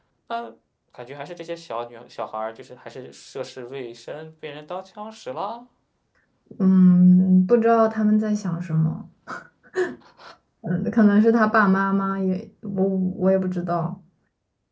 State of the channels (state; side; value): identical; both; correlation 1.00